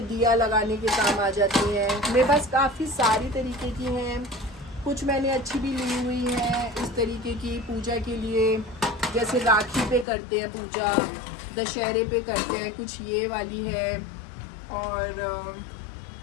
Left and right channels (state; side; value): drops out; right; at 10.1 s